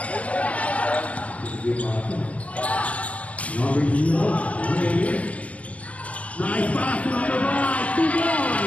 Number 0, Reyes. Nice pass to number 5, 2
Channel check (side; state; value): right; late; 0.065 ms